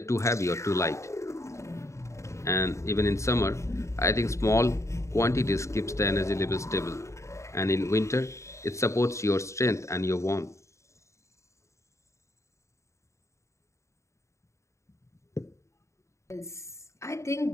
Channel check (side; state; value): right; late; 0.14 ms